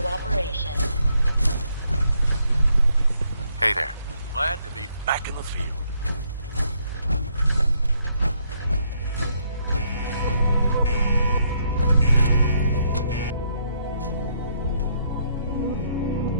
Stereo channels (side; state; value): both; inverted; correlation -0.72